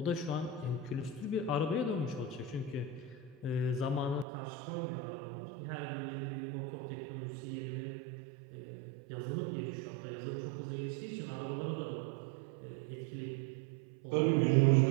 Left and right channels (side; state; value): left; drops out; at 4.2 s